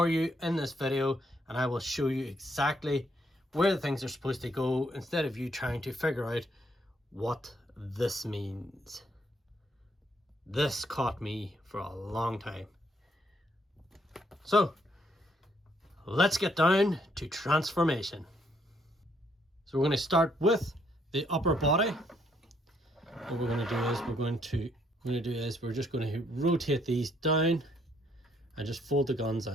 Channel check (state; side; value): normal; both; correlation 0.71